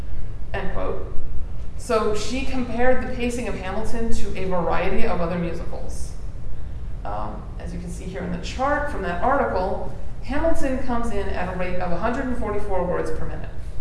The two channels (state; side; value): identical; both; correlation 1.00